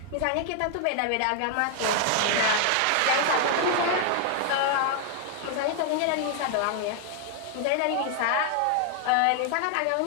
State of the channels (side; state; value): both; different; correlation 0.00